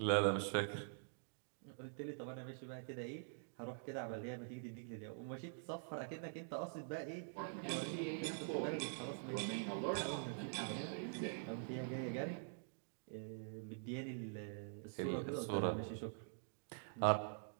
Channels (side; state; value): left; silent; digital silence